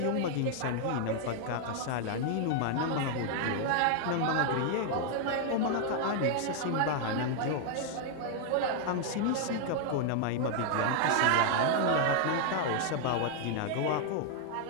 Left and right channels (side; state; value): both; different; correlation 0.00